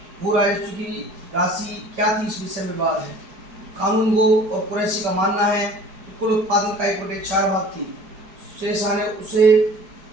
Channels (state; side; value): late; left; 5.1 ms